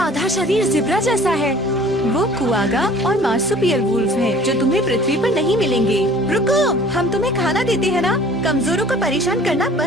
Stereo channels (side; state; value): both; normal; correlation 0.50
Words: शरीर जिब्रा जैसा है। वो कुआगा और मार्सुपियल वुल्फ हैं, जो तुम्हें पृथ्वी पर नहीं मिलेंगे। रुको, हम तुम्हें खाना देते हैं ना। कमजोरों को परेशान करना